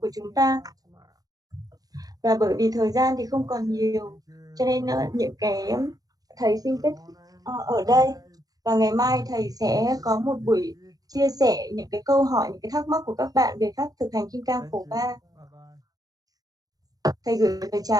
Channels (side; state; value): left; late; 0.18 ms